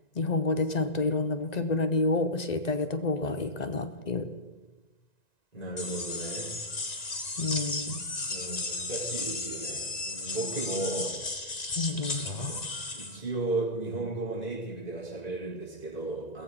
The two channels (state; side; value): late; right; 1.9 ms